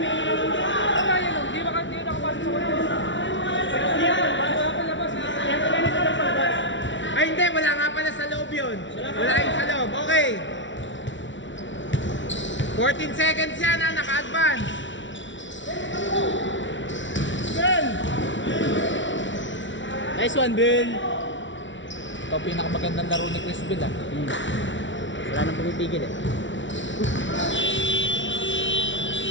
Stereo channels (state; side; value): late; right; 0.55 ms